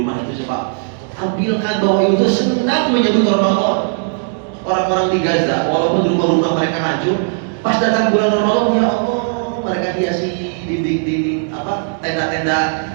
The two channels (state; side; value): silent; left; digital silence